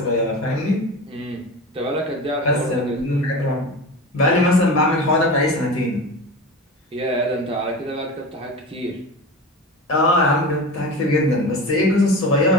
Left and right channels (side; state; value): both; normal; correlation 0.30